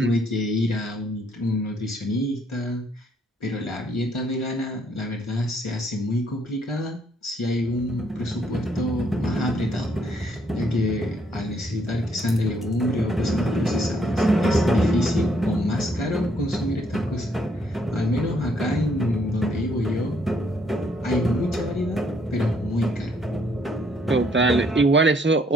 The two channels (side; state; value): both; normal; correlation 0.68